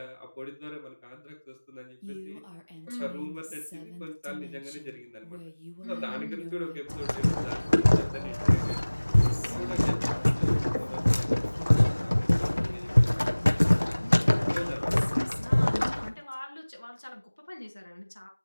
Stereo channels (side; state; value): both; inverted; correlation -1.00